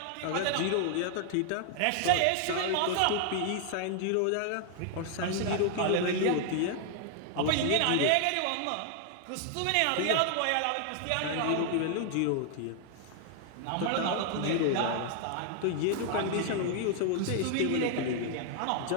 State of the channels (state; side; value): different; both; correlation 0.00